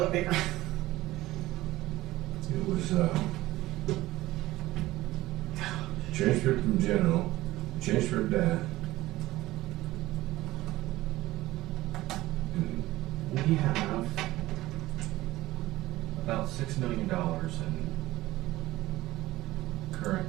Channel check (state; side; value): quieter; left; 17.2 dB